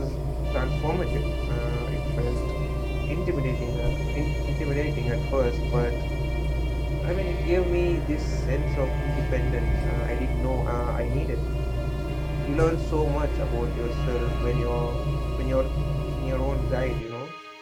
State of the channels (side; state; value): both; identical; correlation 1.00